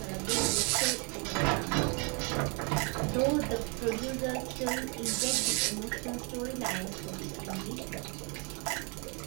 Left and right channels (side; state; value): left; quieter; 34.8 dB